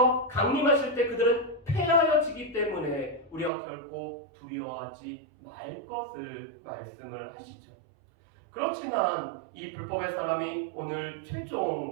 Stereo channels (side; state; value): left; drops out; at 3.5 s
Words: 강림하실 때 그들은 패하여지기 때문에 우리가 결코 두려워하지 말 것을 말씀을 하시죠. 그렇지만 이 불법의 사람이 오늘